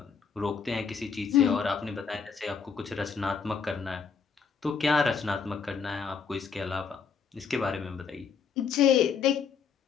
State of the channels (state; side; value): quieter; right; 6.1 dB